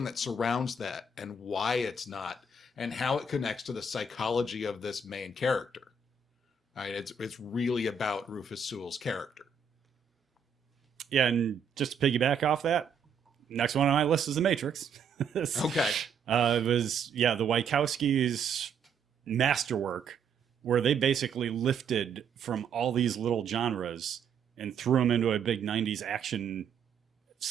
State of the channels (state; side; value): quieter; left; 5.0 dB